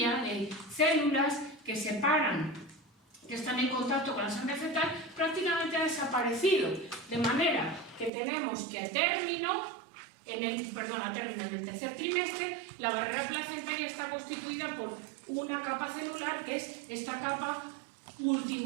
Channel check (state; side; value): drops out; left; at 8.1 s